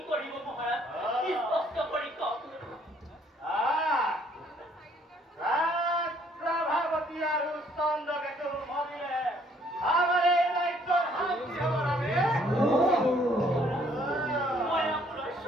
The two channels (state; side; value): normal; both; correlation 0.64